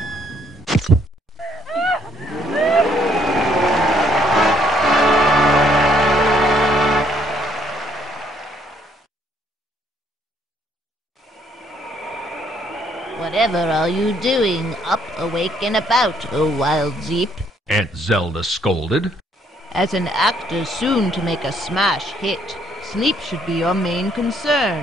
Whatever are you doing, up, awake, and about, O Wild Zeep? Aunt Zelda scolded. As an actor soon to make a smash hit, sleep should be your main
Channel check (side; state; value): both; normal; correlation 0.68